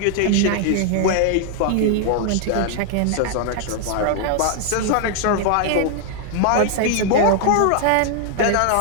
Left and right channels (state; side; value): different; both; correlation 0.00